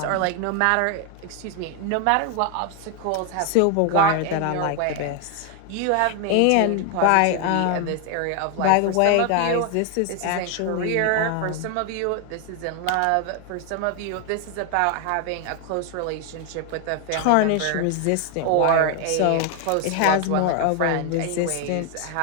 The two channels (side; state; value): both; different; correlation 0.00